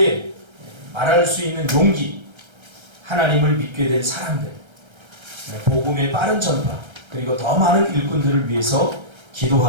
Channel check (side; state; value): left; late; 1.3 ms